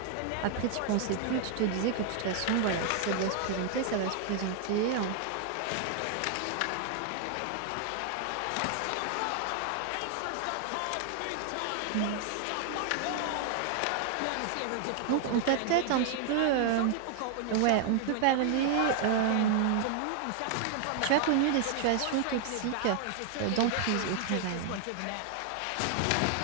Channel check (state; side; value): different; both; correlation -0.01